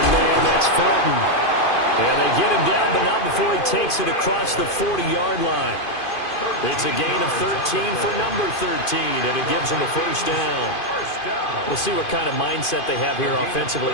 man, that's Felton. And they get him down, but not before he takes it across the 40-yard line. It's a gain of 13 for number 13, and it gives him a first down. We'll see what kind of mindset they have here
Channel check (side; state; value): right; late; 2.5 ms